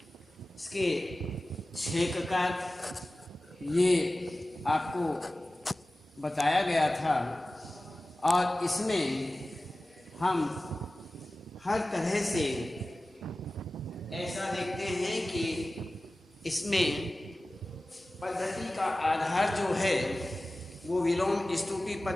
इसके 6 प्रकार ये आपको बताया गया था। और इसमें हम हर तरह से ऐसा देखते हैं कि इसमें पद्धति का आधार जो है वो विलोम स्तूपी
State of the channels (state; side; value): normal; both; correlation 0.96